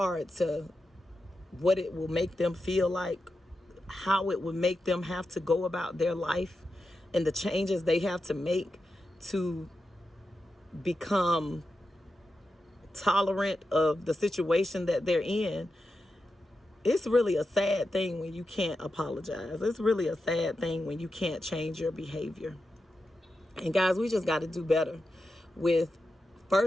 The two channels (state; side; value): normal; both; correlation 0.90